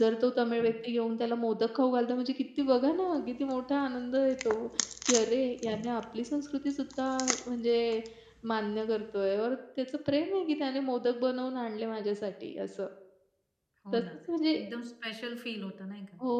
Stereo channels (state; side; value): identical; both; correlation 1.00